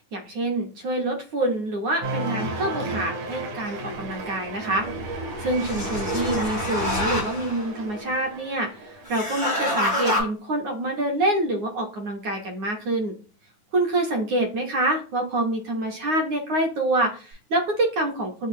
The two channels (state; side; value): late; left; 9.5 ms